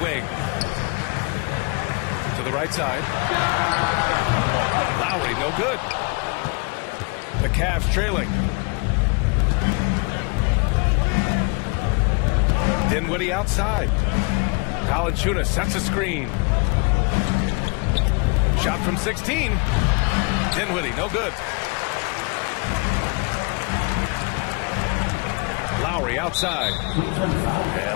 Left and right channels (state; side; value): quieter; right; 32.2 dB